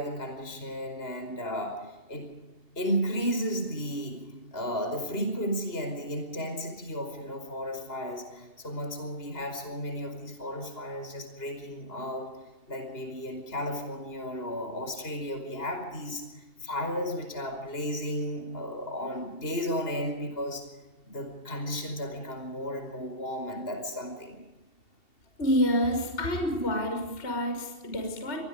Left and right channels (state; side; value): late; right; 2.7 ms